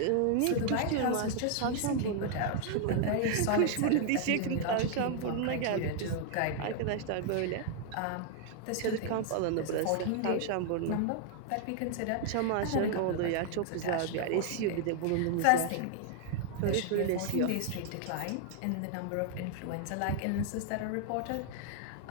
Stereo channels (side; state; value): both; different; correlation 0.00